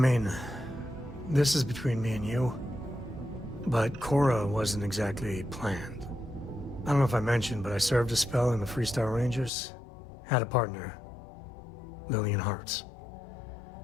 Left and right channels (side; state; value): right; drops out; at 9.5 s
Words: this is between me and you, but Cora wasn't exactly planned. I don't know if I mentioned, but I served a spell in the Freestar Rangers. Had a partner, Lillian Hartz.